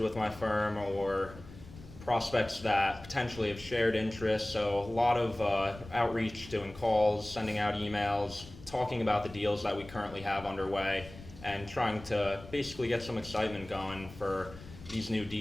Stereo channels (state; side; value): noise; left; rumble, 17 dB below the sound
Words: with my firm, or prospects that potentially have shared interests. So a lot of outreach, doing calls, sending out emails, talking about the deals that we currently have underway, and trying to basically get some excitement going for these new